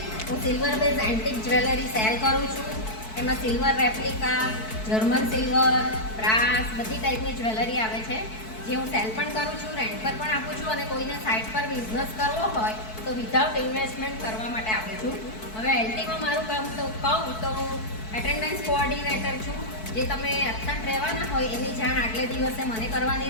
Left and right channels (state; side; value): late; right; 4.6 ms